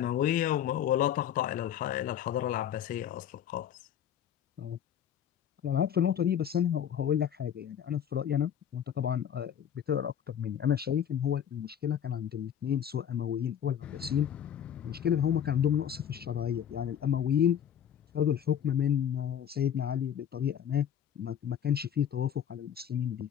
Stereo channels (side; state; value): right; quieter; 9.4 dB